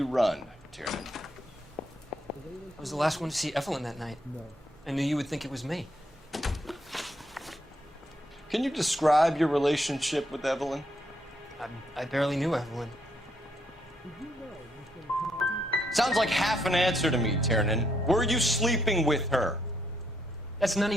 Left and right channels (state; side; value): normal; both; correlation 0.74